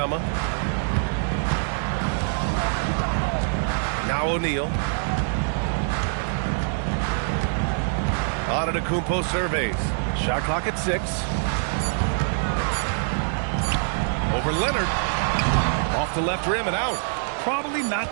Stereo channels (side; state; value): left; silent; digital silence